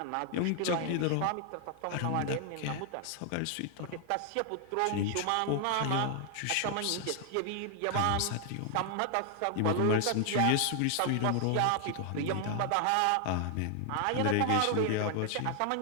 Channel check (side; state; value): both; different; correlation 0.00